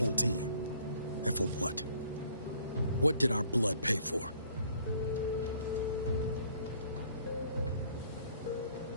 team. And for what? What did our blood pay for?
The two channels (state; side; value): inverted; both; correlation -0.59